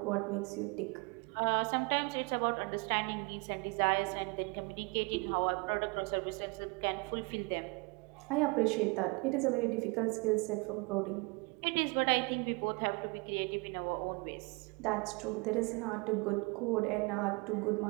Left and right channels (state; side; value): quieter; left; 29.1 dB